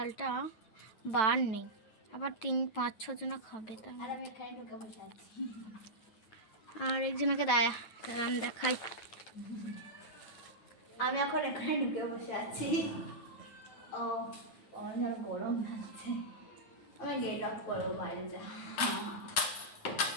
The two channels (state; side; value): late; right; 9.2 ms